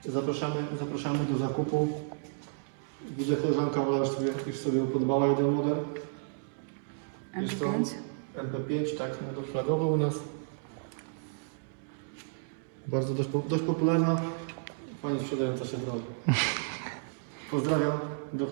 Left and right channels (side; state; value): left; silent; digital silence